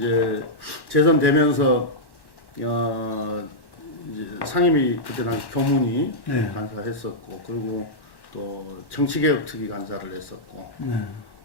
재선 되면서 이제 상임위 그때 당시 교문이 네. 간사했었고, 그리고 또 정치개혁 특위 간사를 했었고, 네.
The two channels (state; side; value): late; right; 1.1 ms